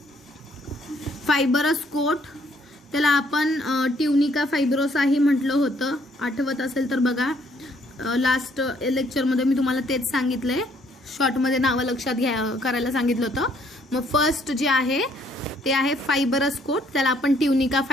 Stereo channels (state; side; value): normal; both; correlation 0.66